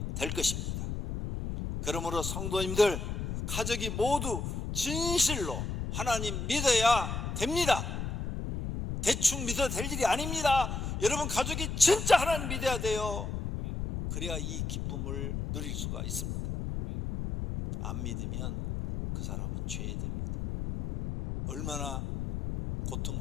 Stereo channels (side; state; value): left; noise; rumble, 4 dB below the sound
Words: 될 것입니다. 그러므로 성도님들, 가족이 모두 진실로 하나님 믿어야 됩니다. 대충 믿어도 될 일이 아닙니다. 여러분 가족이 진짜 하나님 믿어야 돼요. 그래야 이 기쁨을 누릴 수가 있습니다. 안 믿으면 그 사람은 죄됩니다. 얼마나